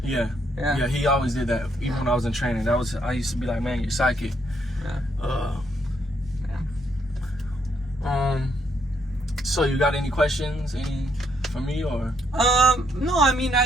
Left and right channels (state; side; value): normal; both; correlation 0.73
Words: Yeah. He always did that. Even when I was in training, I used to be like, man, you're psychic. Yeah. So you got any questions? Any for me or? No, I mean,